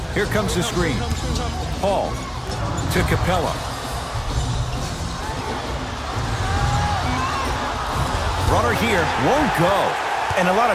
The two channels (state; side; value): identical; both; correlation 1.00